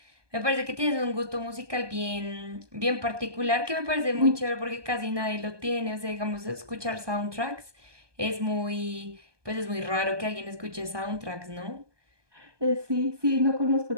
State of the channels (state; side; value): late; left; 1.2 ms